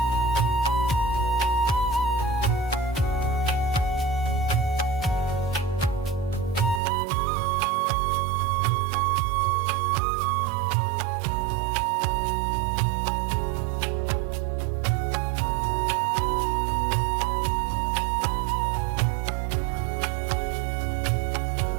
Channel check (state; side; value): drops out; left; at 6.8 s